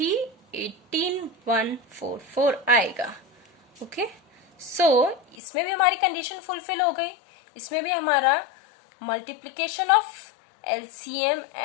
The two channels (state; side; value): drops out; right; at 5.4 s